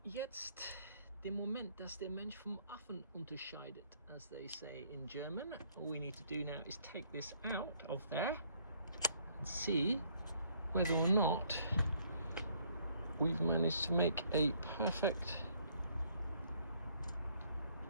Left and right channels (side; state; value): both; inverted; correlation -0.65